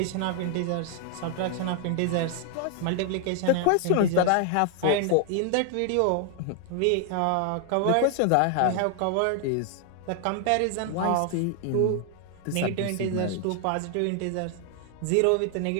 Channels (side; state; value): both; different; correlation 0.00